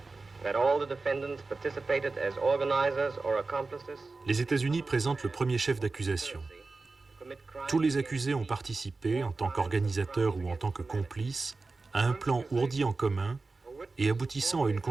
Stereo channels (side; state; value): left; quieter; 3.7 dB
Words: that all the defendants participated as organizers or accomplices. Les États-Unis présentent le premier chef d'accusation. Tous les accusés ont participé, en tant qu'organisateurs ou en tant que complices, à un plan ourdi en commun et aboutissant à une